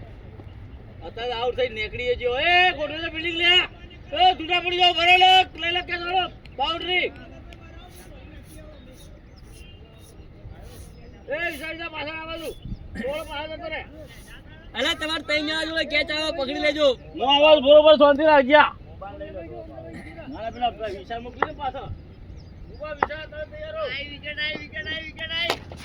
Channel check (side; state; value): both; identical; correlation 1.00